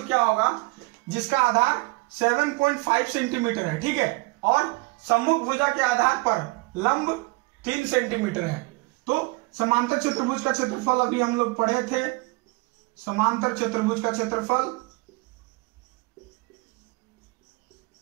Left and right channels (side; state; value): left; quieter; 25.2 dB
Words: क्या होगा जिसका आधार 7.5 सेंटीमीटर है। ठीक है, और सम्मुख भुजा के आधार पर लंब 3 सेंटीमीटर है। तो समांतर चतुर्भुज का क्षेत्रफल अभी हम लोग पढ़े थे, समांतर चतुर्भुज का क्षेत्रफल